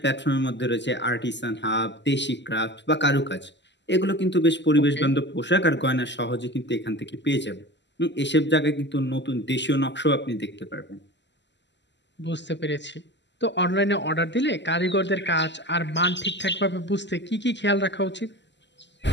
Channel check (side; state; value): right; late; 0.51 ms